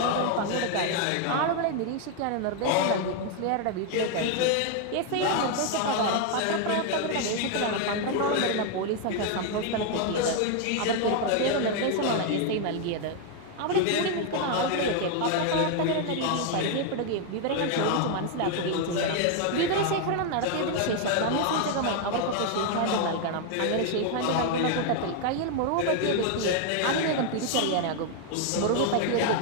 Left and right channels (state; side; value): different; both; correlation 0.00